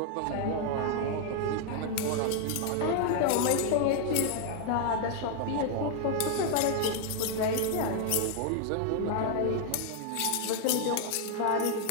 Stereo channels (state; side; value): different; both; correlation 0.00